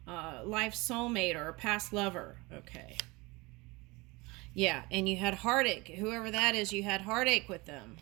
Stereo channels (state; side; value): quieter; left; 24.3 dB